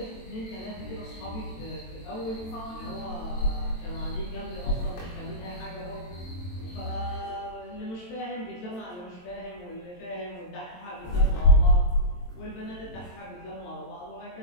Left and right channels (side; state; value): right; late; 22 ms